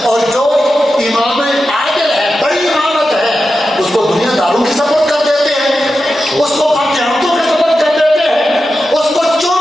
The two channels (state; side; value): normal; both; correlation 0.91